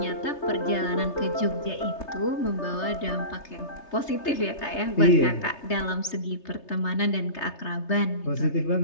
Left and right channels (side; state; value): right; late; 3.3 ms